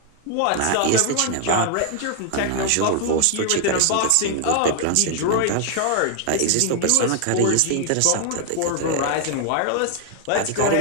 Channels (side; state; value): both; different; correlation 0.00